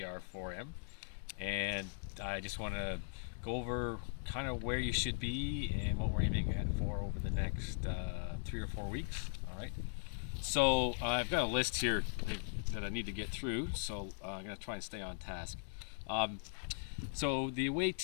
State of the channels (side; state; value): right; silent; digital silence